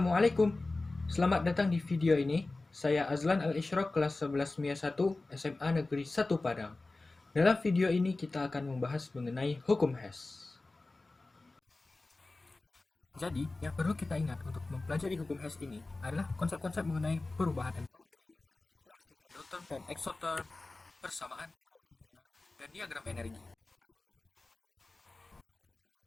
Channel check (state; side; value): quieter; right; 3.2 dB